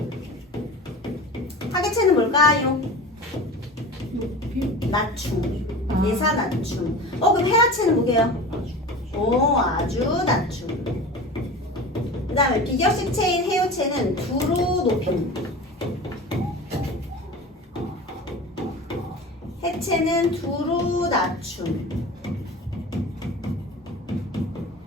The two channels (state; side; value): normal; both; correlation 0.34